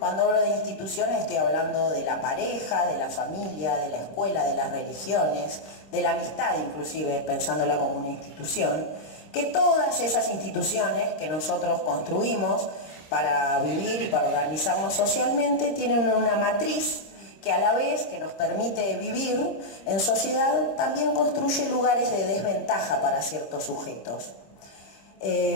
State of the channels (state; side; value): late; right; 26 ms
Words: hablo de instituciones estoy hablando de la pareja, de la familia, de la escuela, de las religiones, de la amistad inclusive, pensándola como una institución, que todas esas instituciones que nosotros construimos para vivir y para organizarnos socialmente tienen una matriz que a la vez que nos permite vivir en sociedad, también construye lugares de desventaja para ciertos sujetos.